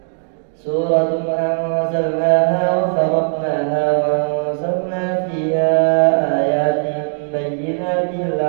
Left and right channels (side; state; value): left; silent; digital silence